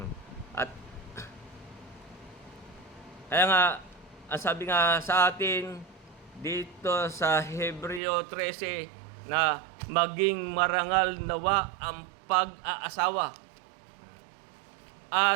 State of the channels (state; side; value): drops out; left; at 8.0 s